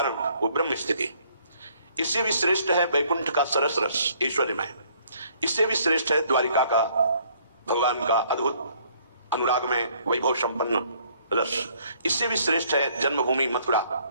वो ब्रह्म स्थिति। इससे भी श्रेष्ठ है वैकुंठ का सरस रस ऐश्वर्यमय, इससे भी श्रेष्ठ है द्वारिका का भगवान का अद्भुत अनुराग में वैभव संपन्न रस, इससे भी श्रेष्ठ है जन्मभूमि मथुरा,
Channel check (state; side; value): inverted; both; correlation -0.63